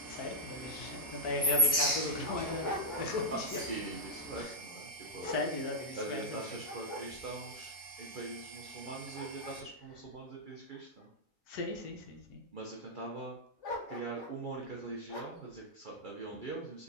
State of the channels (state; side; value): normal; both; correlation -0.09